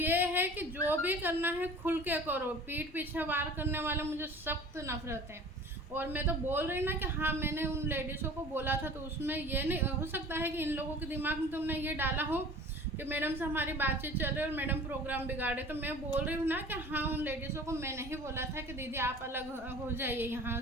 ये है कि जो भी करना है खुल के करो, पीठ पीछे वार करने वाले मुझे सख्त नफरत है। और मैं तो बोल रही ना कि हाँ मैंने उन लेडीज़ों को बोला था, तो उसमें ये नहीं हो सकता है कि इन लोगों के दिमाग में तुमने ये डाला हो कि मैडम से हमारी बातचीत चल रही है और मैडम प्रोग्राम बिगाड़े। तो मैं बोल रही हूँ ना कि हाँ उन लेडीज़ों को मैंने ही बोला था कि दीदी आप अलग हो जाइए यहाँ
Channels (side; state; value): both; normal; correlation 0.43